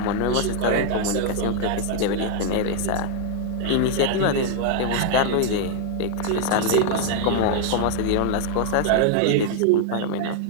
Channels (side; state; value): both; different; correlation 0.00